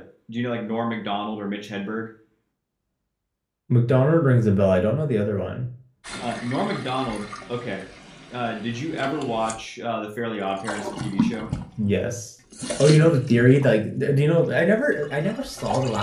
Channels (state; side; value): identical; both; correlation 1.00